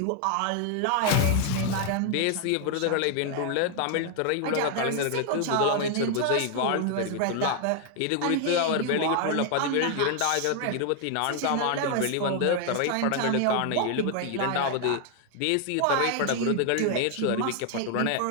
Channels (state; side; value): different; both; correlation 0.00